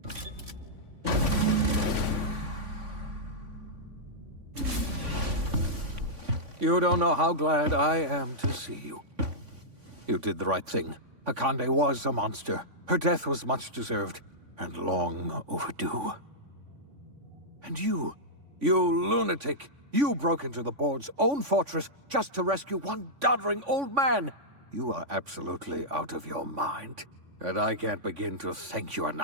You don't know how glad I am to see you. You did the right thing. Akande was a monster. Her death was much deserved, and long overdue. And you lunatic, you broke into the board's own fortress just to rescue one doddering old man. You are absolutely out of your mind, and I can't begin to thank you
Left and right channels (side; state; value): left; late; 3.5 ms